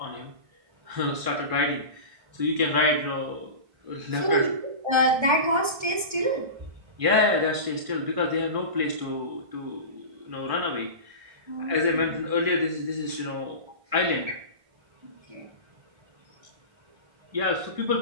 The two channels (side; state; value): left; late; 1.6 ms